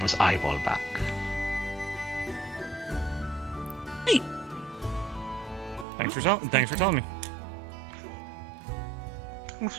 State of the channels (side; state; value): left; drops out; at 5.9 s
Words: eyeball back. Thanks for telling me.